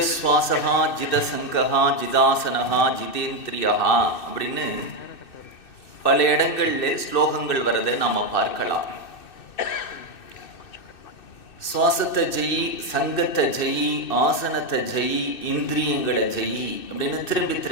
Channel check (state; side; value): late; right; 2.6 ms